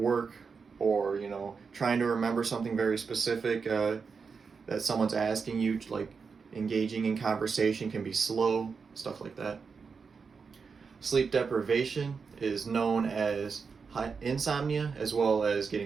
or, trying to remember something very specific that someone's asking you, like engaging in conversation can be slow, stuff like that. Sleep deprivation is known as insomnia, as well as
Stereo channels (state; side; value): quieter; left; 5.4 dB